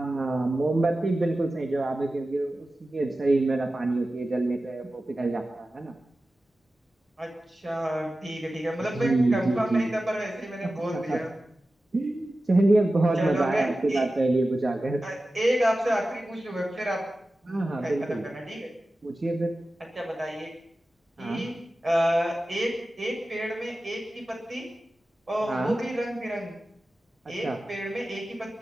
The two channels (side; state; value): both; normal; correlation 0.95